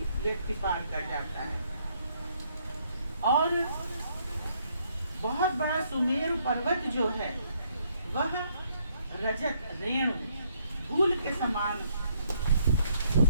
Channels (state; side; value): inverted; both; correlation -0.70